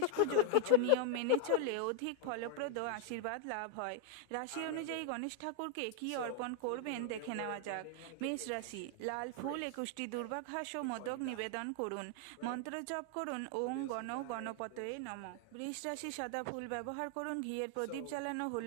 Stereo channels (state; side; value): different; both; correlation -0.01